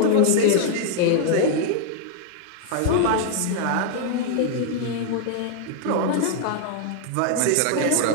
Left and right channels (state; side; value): different; both; correlation 0.00